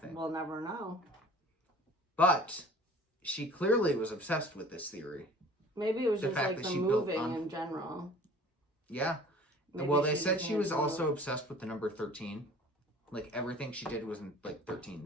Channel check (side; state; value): both; normal; correlation 0.47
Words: We'll never know. But she clearly was obsessed with this theory. Maybe it was The just fact like that the she built moving on- in general. Yeah. Maybe Well, they just said she had was to- also obsessed with the number 13. Like everything she did was in like